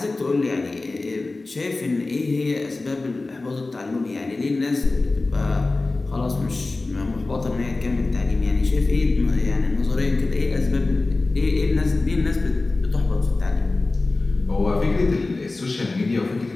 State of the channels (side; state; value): right; quieter; 3.3 dB